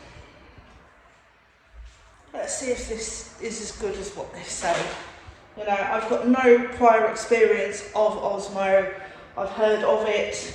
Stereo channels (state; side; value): identical; both; correlation 1.00